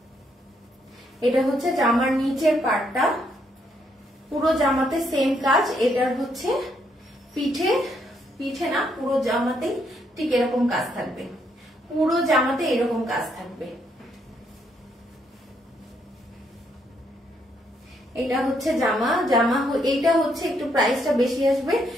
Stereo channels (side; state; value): both; normal; correlation 0.73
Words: এটা হচ্ছে জামার নিচের পার্টটা, পুরো জামাতে সেম কাজ। এটার হচ্ছে পিঠে না, পুরো জামাতে ঠিক এরকম কাজ থাকবে, পুরো জামাতে এরকম কাজ থাকবে। এটা হচ্ছে জামা, এইটা হচ্ছে একটু প্রাইসটা বেশি আসবে।